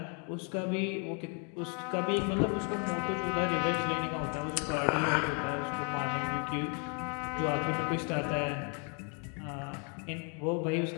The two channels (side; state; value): right; quieter; 38.6 dB